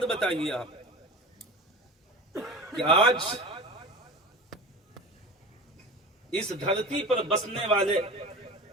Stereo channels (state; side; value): normal; both; correlation 0.33